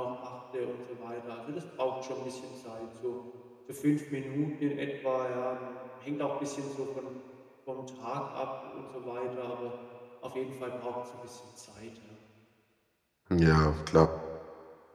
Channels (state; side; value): identical; both; correlation 1.00